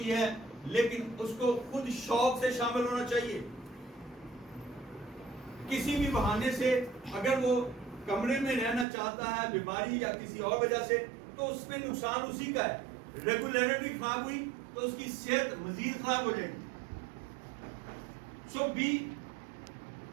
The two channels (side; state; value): left; drops out; at 8.8 s